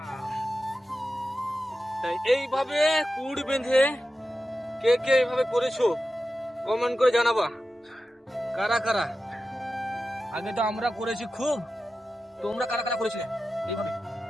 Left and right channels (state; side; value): normal; both; correlation 0.92